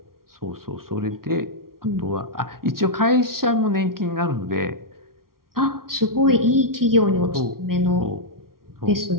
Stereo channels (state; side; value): late; left; 0.93 ms